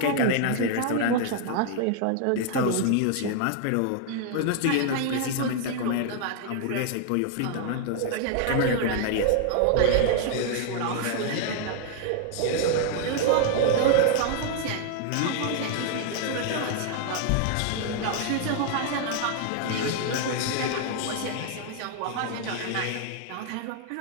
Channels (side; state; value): both; different; correlation 0.00